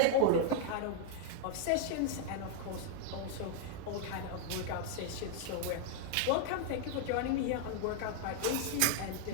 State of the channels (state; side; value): different; both; correlation 0.00